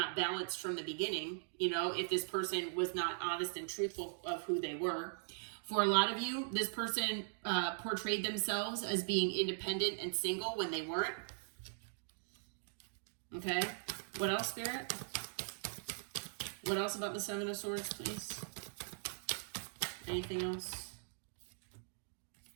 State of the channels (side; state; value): left; silent; digital silence